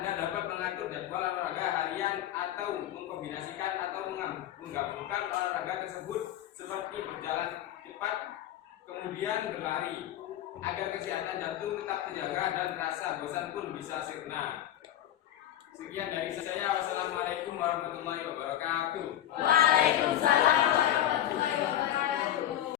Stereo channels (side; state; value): right; quieter; 12.2 dB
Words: dapat mengatur jadwal olahraga harian atau mengkombinasikan atau menggabungkan olahraga tersebut seperti berjalan cepat kemudian berlari agar kesehatan jantung tetap terjaga dan rasa bosan pun bisa sirna. Sekian dari saya. Wassalamualaikum warahmatullahi wabarakatuh. Waalaikumsalam warahmatullahi wabarakatuh.